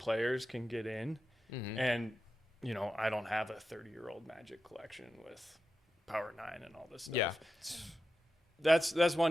can get in. Mm-hmm. And, I don't have a 30-year-old Magic collection with Power 9 and all this stuff. Yeah. That's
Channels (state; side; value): normal; both; correlation 0.90